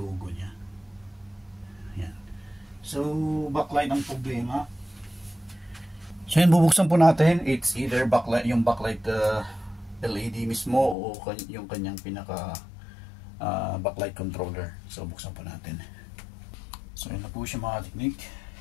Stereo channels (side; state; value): right; drops out; at 11.0 s